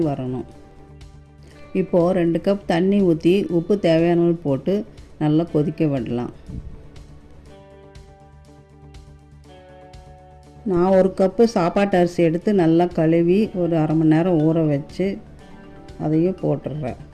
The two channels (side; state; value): both; identical; correlation 1.00